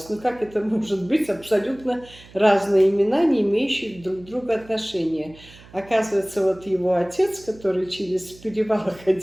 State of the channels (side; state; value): right; noise; hum, 22 dB below the sound